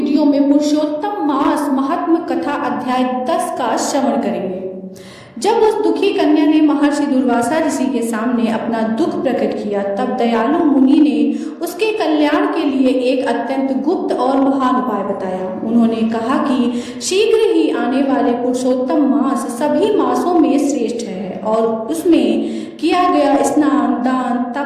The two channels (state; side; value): identical; both; correlation 1.00